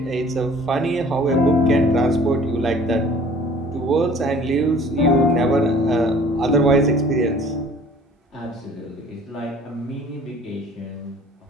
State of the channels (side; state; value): both; normal; correlation 0.50